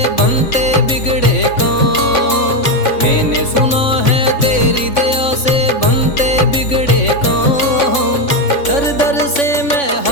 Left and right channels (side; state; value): right; late; 3.5 ms